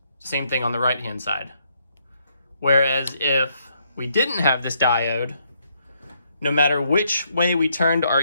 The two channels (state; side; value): inverted; both; correlation -0.73